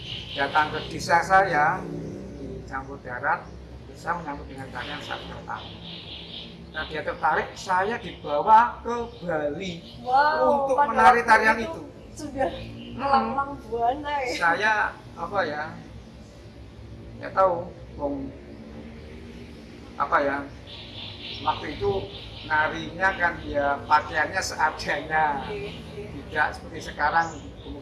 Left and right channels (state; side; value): identical; both; correlation 1.00